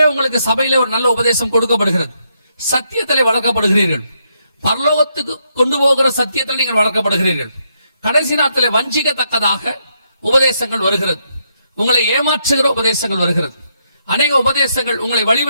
உங்களுக்கு சபையில ஒரு நல்ல உபதேசம் கொடுக்கப்படுகிறது, சத்தியத்திலே வளர்க்கப்படுகிறீர்கள், பரலோகத்துக்கு கொண்டு போகிற சத்தியத்தில் நீங்கள் வளர்க்கப்படுகிறீர்கள். கடைசி நாட்களில் வஞ்சிக்கத்தக்கதாக உபதேசங்கள் வருகிறது, உங்களை ஏமாற்றுகிற உபதேசங்கள் வருகிறது, அநேக உபதேசங்கள் உங்களை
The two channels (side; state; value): both; inverted; correlation -0.77